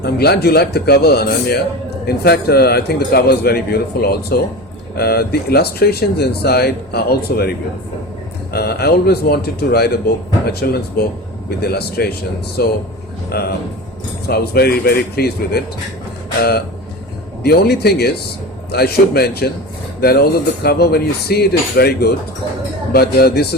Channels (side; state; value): both; normal; correlation 0.29